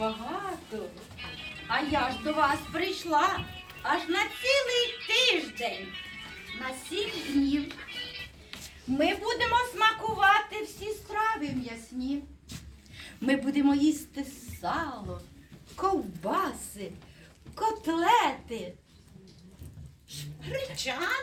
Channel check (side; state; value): both; identical; correlation 1.00